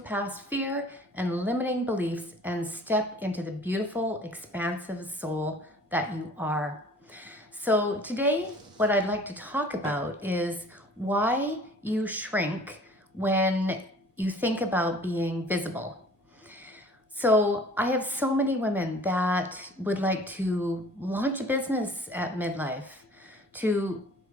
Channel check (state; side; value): normal; both; correlation 0.49